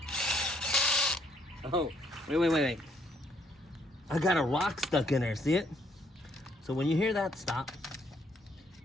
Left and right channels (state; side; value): normal; both; correlation 0.68